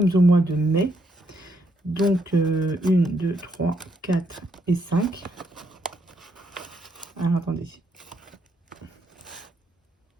au mois de mai. Donc 1, 2, 3, 4 et 5. Alors attendez.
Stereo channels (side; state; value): both; normal; correlation 0.75